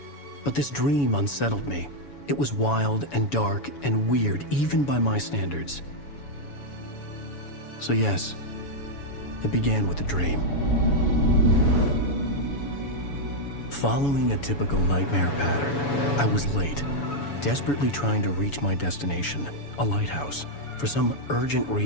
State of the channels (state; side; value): late; right; 7.1 ms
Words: but this dream unsettled me. It was wild and dark and weird, even by my standards. So yes, it began with a dream. Following a typical nightmare pattern, I was late, desperately trying to reach my destination, a lighthouse. For some urgent